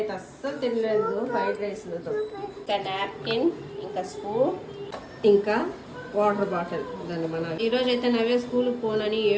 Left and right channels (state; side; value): identical; both; correlation 1.00